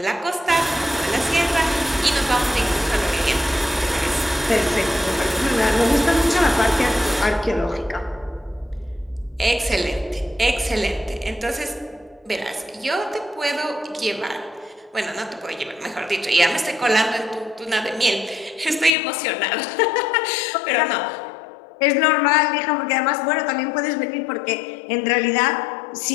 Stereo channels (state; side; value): drops out; right; at 18.9 s